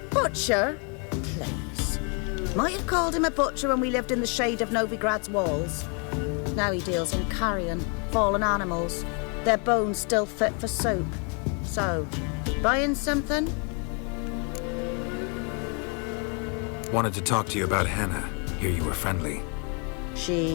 Butcher? Please. Might have called him a butcher when we lived in the shade of Novigrad's walls. Now he deals in carrion, fallen animals, their bones still fit for soup. So, buying something? Wanted to talk to you about Hannah. Hear you were friendly.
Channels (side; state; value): right; quieter; 36.6 dB